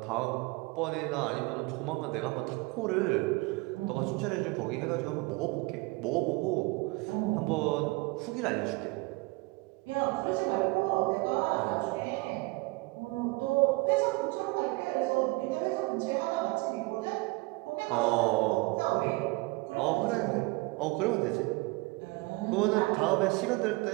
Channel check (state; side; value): quieter; left; 24.9 dB